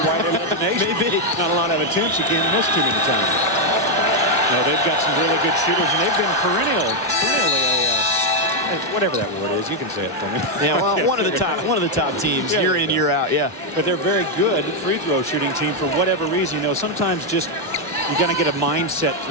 they led the nation. Maybe. Not a lot of attempts. You can't miss too many times. No, they've got some really good shooters, and they've been perennially whatever that word is. You can say it for me. Yeah, well, one of the top teams, yeah, year in, year out. Yeah. But they're very good free throw shooting team for whatever reason. You know, sometimes just you got to get a mindset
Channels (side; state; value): both; normal; correlation 0.01